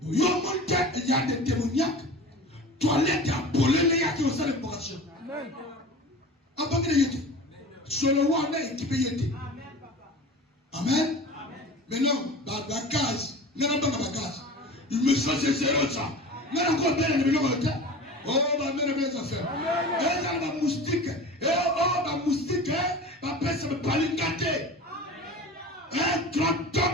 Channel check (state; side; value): normal; both; correlation 0.35